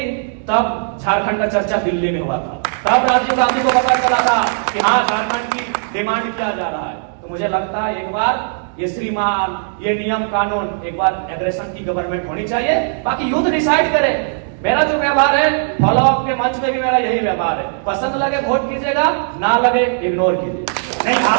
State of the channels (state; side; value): silent; left; digital silence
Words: तब झारखंड का चर्चा दिल्ली में हुआ था, तब राजीव गांधी को पता चला था कि हाँ झारखंड की डिमांड किया जा रहा है। तो मुझे लगता है एक बार ये श्रीमान, ये नियम कानून, एक बार एग्रेशन की गवर्नमेंट होनी चाहिए, बाकी युद्ध डिसाइड करे। मेरा जो व्यवहार है फॉलो अप के मंच में भी मेरा यही व्यवहार है, पसंद लगे वोट कीजिएगा, ना लगे इग्नोर कीजिए। नहीं, आप